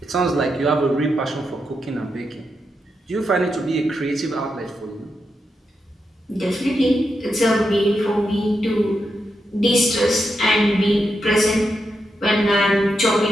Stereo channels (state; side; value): normal; both; correlation 0.85